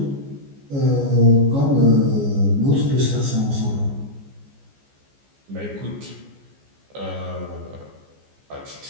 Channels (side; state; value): left; late; 14 ms